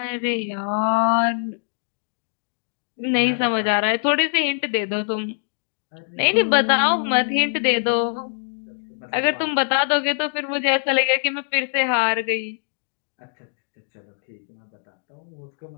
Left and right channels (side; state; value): right; silent; 63 dB below the other